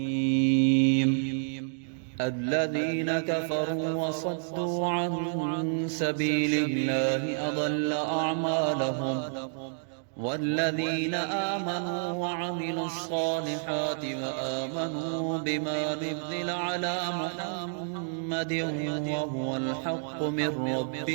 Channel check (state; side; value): silent; left; digital silence